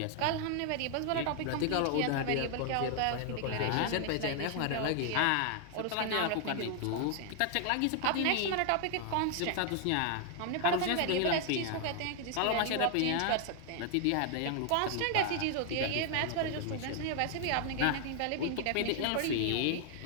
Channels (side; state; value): both; different; correlation 0.00